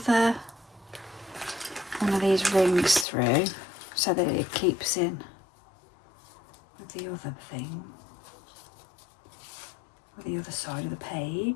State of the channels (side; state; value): right; drops out; at 3.1 s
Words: one of these rings through so that it keeps in with the other thing, with the other side of the